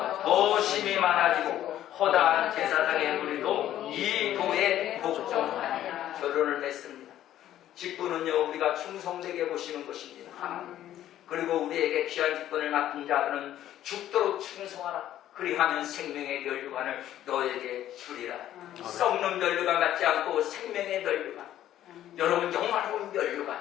더 심히 많아지고 허다한 제사장의 무리도 이 도에 복종하니라. 결론을 맺습니다. 직분은요 우리가 충성되게 보시는 것입니다. 하나님. 그리고 우리에게 귀한 직분을 맡은 자들은 죽도록 충성하라. 그리하면 생명의 면류관을 너에게 주리라. 썩는 면류관 같지 않고 생명의 면류관. 여러분 영원한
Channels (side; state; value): right; quieter; 12.3 dB